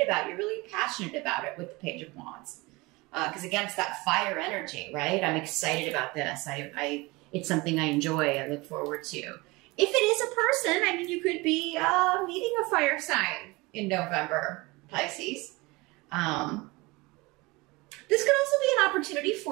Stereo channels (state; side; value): quieter; left; 23.7 dB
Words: about. You're really passionate about it with the Page of Wands. Because again, it's that fire energy, right? I'm excited about this. It's something I enjoy. I look forward to. If it is a person, I mean, you could be meeting a fire sign in November, Pisces. This could also be an opportunity